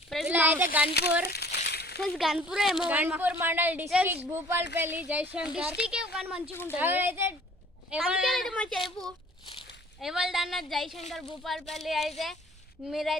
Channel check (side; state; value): both; normal; correlation 0.51